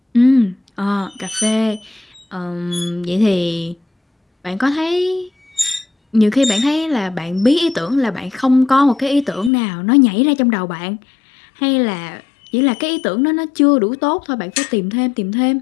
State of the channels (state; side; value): drops out; right; at 9.5 s